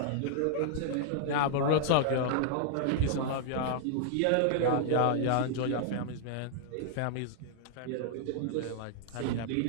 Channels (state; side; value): different; both; correlation 0.00